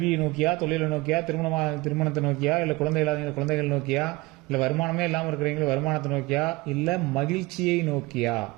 நோக்கியா, தொழிலை நோக்கியா, திருமணத்தை நோக்கியா, இல்ல குழந்தை இல்லாதவங்க குழந்தைகள் நோக்கியா, இல்ல வருமானமே இல்லாமல் இருக்கிறவங்க வருமானத்தை நோக்கியா, இல்ல மகிழ்ச்சியை நோக்கியா?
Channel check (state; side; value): quieter; left; 22.5 dB